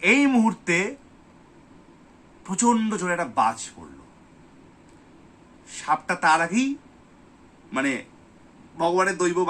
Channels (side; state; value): both; identical; correlation 1.00